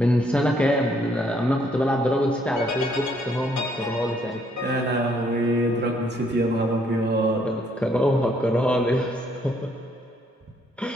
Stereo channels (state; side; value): normal; both; correlation 0.68